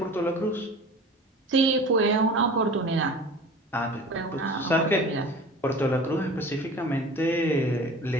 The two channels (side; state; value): both; normal; correlation 0.40